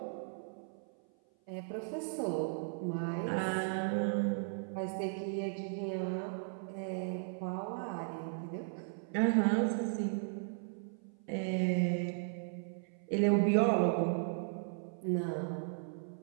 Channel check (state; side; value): silent; left; 54 dB below the other